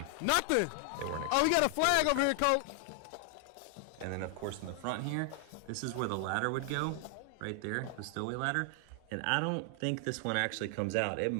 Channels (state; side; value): different; both; correlation 0.00